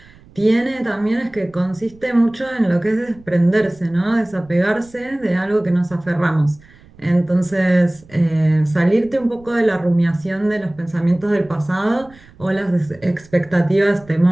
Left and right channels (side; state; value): right; noise; rumble, 25 dB below the sound